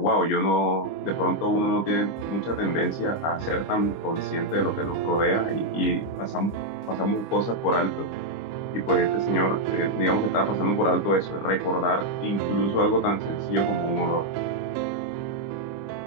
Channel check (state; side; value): late; right; 25 ms